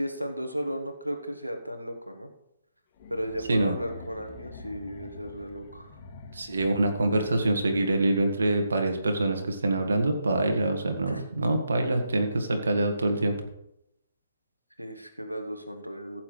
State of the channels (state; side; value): inverted; both; correlation -0.83